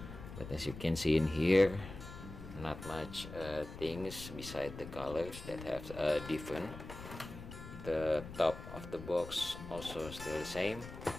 But as you can see in here, not much things beside the colors that have different. The top of the box also still the same.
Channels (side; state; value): left; noise; rumble, 12 dB below the sound